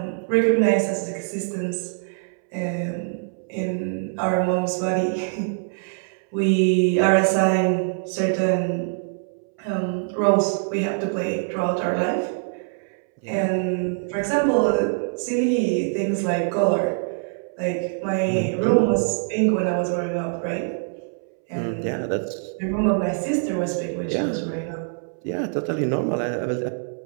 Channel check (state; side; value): silent; left; 63 dB below the other